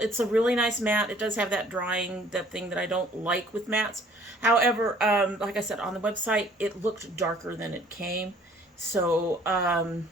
a really nice matte. It does have that drying, that thing that I don't like with mattes. However, like I said, on the website, it looked darker than it came. So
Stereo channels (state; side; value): normal; both; correlation 0.56